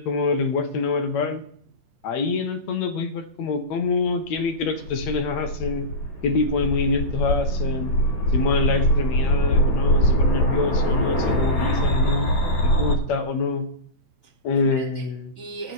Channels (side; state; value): right; late; 8.7 ms